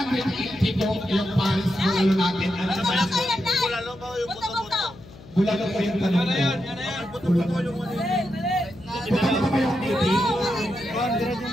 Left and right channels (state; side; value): noise; left; hum, 20 dB below the sound